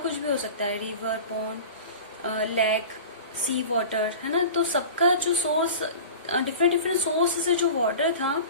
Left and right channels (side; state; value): both; inverted; correlation -0.36